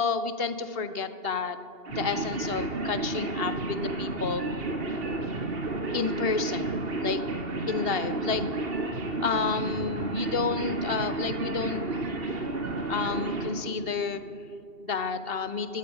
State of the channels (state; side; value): late; left; 2.8 ms